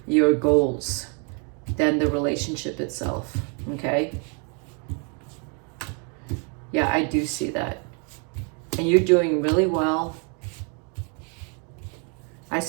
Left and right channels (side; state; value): left; quieter; 37.1 dB